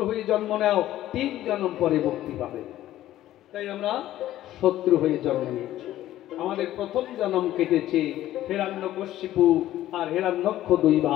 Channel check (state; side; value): quieter; right; 13.8 dB